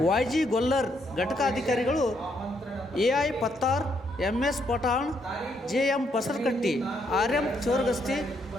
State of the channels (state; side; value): normal; both; correlation 0.74